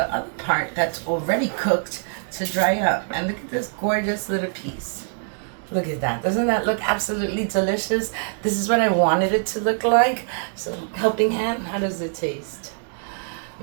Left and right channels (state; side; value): silent; left; 63 dB below the other